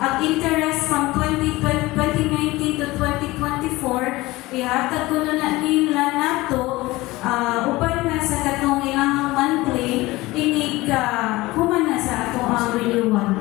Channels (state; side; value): quieter; right; 20.0 dB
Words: interest from 2019 to 2024, ihatag ko na nila nato upan na sa katong ilang monthly, inig human na sa ato ang